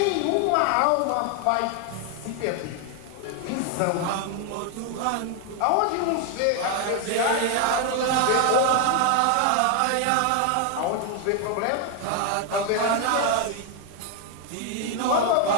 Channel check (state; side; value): different; both; correlation 0.01